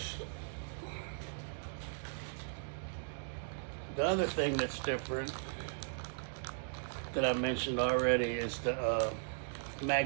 The other thing that's different that I mentioned already is the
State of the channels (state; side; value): silent; left; digital silence